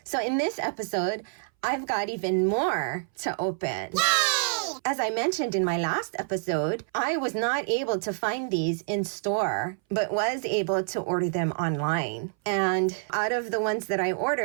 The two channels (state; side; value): silent; left; 60 dB below the other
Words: So in this episode, I've got even more to open. Yay! As I mentioned in my last episode, I was not able to find these in store, but was able to order them online. And out of the ones that I